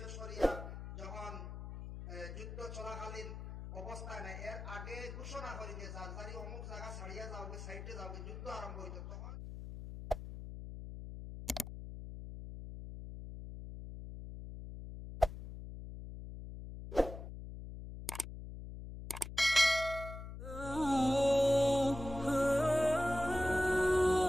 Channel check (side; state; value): left; noise; hum, 9 dB below the sound